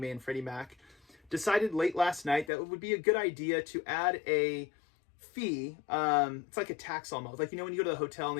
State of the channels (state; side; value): drops out; right; at 2.5 s